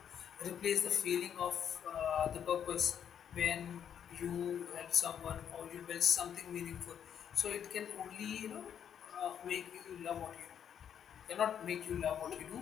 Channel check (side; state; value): right; quieter; 8.8 dB